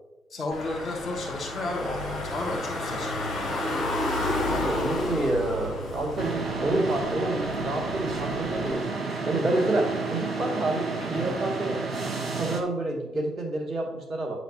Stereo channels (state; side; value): normal; both; correlation 0.71